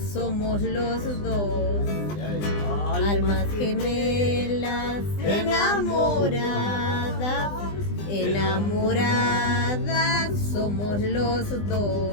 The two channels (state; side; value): late; right; 20 ms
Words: somos los dos. Almas gemelas enamoradas, enamoradas somos los